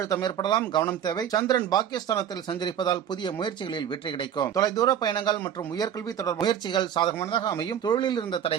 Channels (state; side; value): quieter; left; 9.3 dB